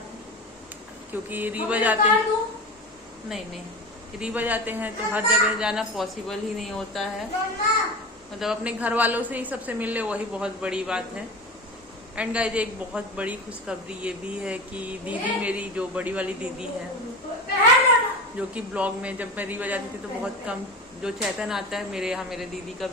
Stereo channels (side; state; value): both; normal; correlation 0.28